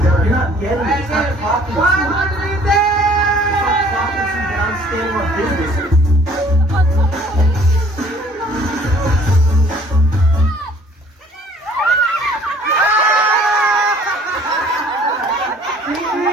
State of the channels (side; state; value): both; normal; correlation 0.56